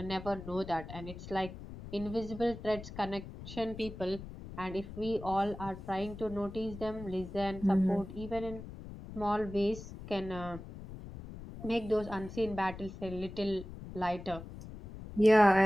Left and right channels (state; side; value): noise; left; rumble, 12 dB below the sound